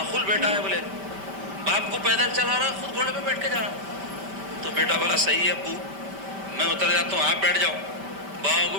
بیٹا ہے، بولے باپ کو پیدل چلا رہا خود گھوڑے پہ بیٹھ کے جا رہا. تو بیٹا بولا صحیح ہے ابو، میں اتر جاتا ہوں، آپ بیٹھ جاؤ. باپ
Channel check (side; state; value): left; late; 5.1 ms